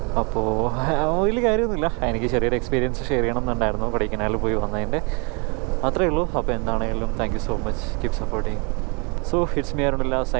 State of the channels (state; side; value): quieter; left; 32.9 dB